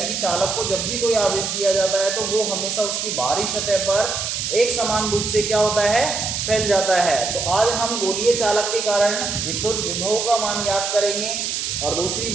कि चालक को जब भी कोई आवेश दिया जाता है तो वो हमेशा उसकी बाहरी सतह पर एक समान रूप से क्या होता है, फैल जाता है। तो आज हम गोलीय चालक के कारण विद्युत विभव का मान याद करेंगे। और दूसरी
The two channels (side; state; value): right; noise; hiss, 2 dB below the sound